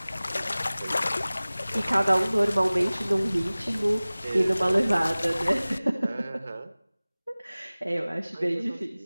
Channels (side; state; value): both; inverted; correlation -0.99